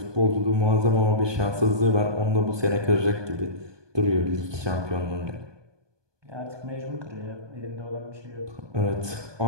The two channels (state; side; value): late; left; 1.2 ms